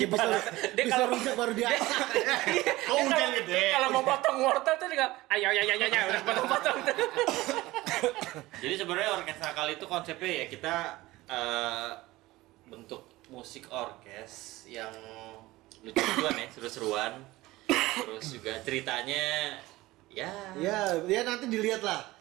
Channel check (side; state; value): left; quieter; 18.7 dB